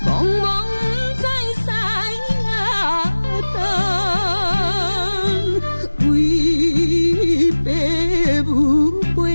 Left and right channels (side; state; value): both; inverted; correlation -1.00